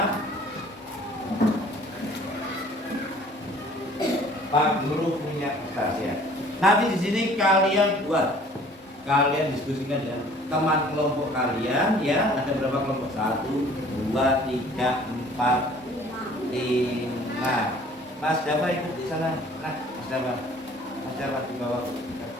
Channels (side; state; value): both; normal; correlation 0.52